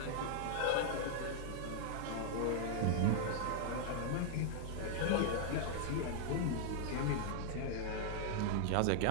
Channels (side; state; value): both; different; correlation -0.01